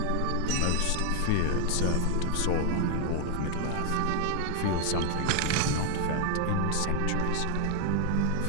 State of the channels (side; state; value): both; different; correlation 0.00